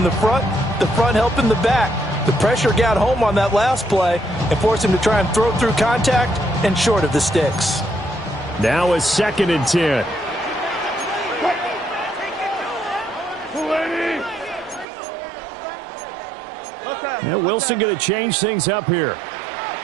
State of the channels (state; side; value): drops out; left; at 14.9 s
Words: the front helping the back. The pressure got home on that last play and forced him to try and throw through contact and short of the sticks. Now a 2nd and 10. Yeah, Wilson going to change things up here.